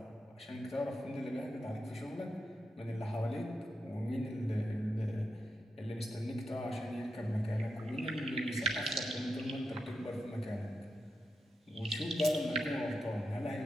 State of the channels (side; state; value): both; normal; correlation 0.87